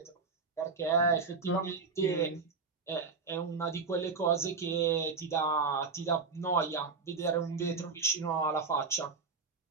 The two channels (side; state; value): left; quieter; 4.6 dB